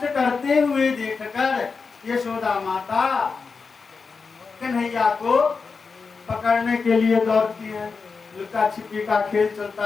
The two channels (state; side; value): quieter; right; 4.9 dB